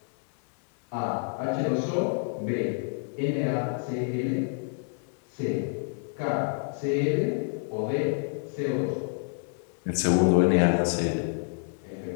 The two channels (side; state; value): right; silent; 57 dB below the other